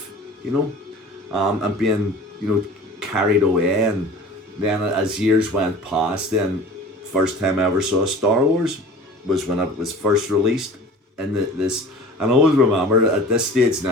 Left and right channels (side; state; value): both; normal; correlation 0.42